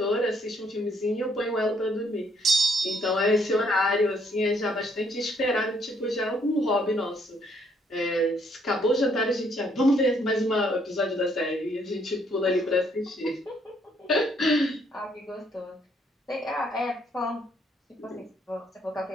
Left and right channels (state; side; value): normal; both; correlation 0.69